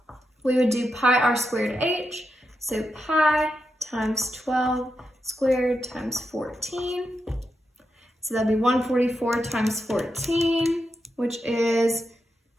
we would do pi r squared h. So pi times 12 squared times 14. So that'd be 144 times 14, which is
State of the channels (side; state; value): both; normal; correlation 0.86